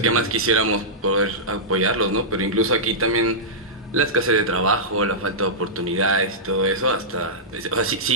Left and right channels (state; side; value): normal; both; correlation -0.13